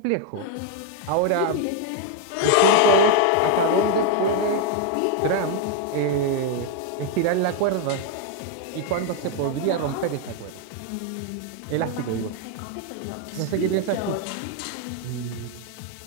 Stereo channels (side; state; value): both; different; correlation 0.00